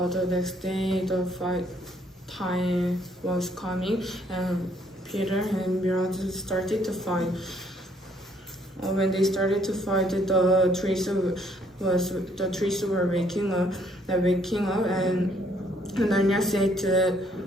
next day, the fight time was coming, and Peter and Miraz started to fight. When they started to fight, the trees were waking up, and Narnia said to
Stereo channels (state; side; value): normal; both; correlation 0.66